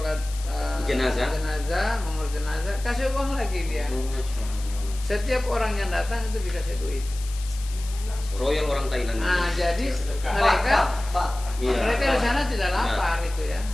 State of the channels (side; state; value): left; noise; hiss, 15 dB below the sound